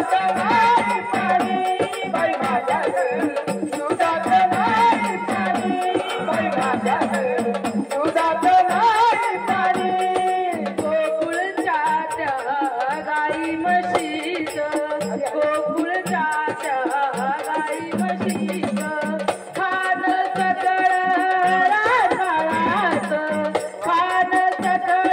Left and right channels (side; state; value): both; identical; correlation 1.00